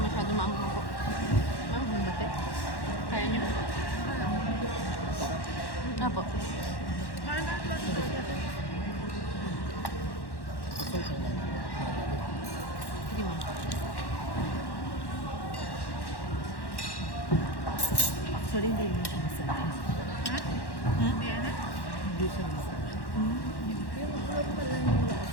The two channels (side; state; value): right; late; 1.1 ms